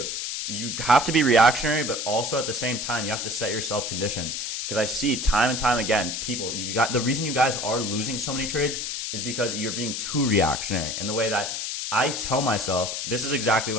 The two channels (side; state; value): left; noise; hiss, 3 dB below the sound